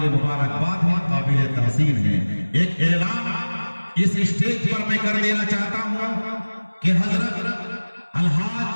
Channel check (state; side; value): inverted; both; correlation -1.00